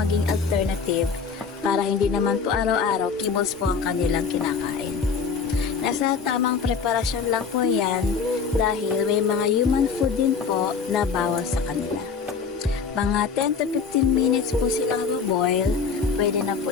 alternative para hindi naman po araw-araw kibos po ang kanilang kinakain. Nasa tamang preparasyon lang po yan dahil may mga human food din po na bawal sa kanila. Mga 10 to 15 minutes po silang boil, pwede na po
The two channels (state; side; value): quieter; right; 5.6 dB